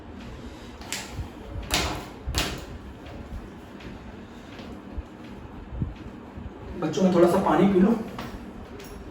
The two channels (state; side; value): identical; both; correlation 1.00